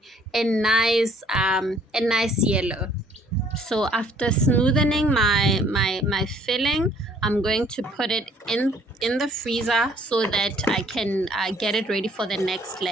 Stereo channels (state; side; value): normal; both; correlation 0.60